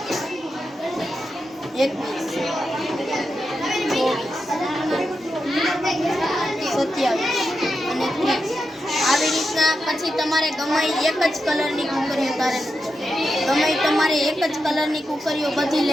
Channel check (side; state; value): both; normal; correlation 0.88